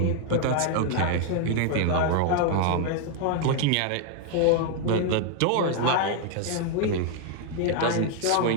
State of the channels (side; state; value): both; different; correlation 0.00